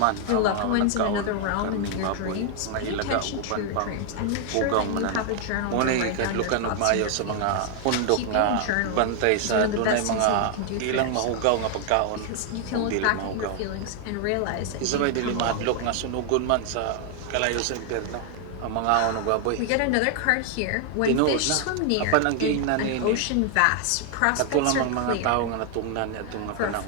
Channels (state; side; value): different; both; correlation 0.00